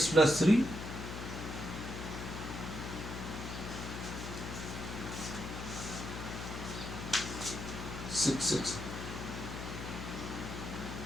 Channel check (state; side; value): noise; left; hum, 6 dB below the sound